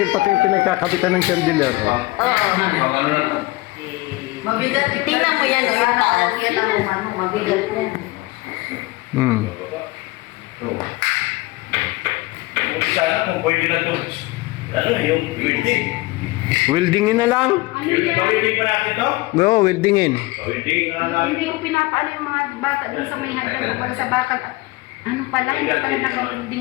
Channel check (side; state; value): right; quieter; 21.5 dB